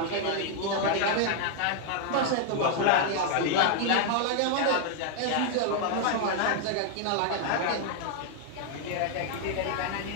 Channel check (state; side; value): different; both; correlation 0.00